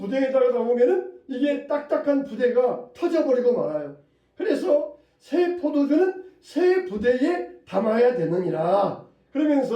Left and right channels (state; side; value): identical; both; correlation 1.00